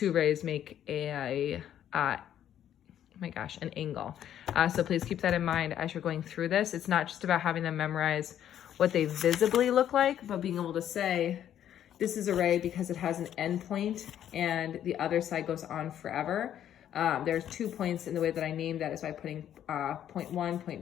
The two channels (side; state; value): right; quieter; 10.6 dB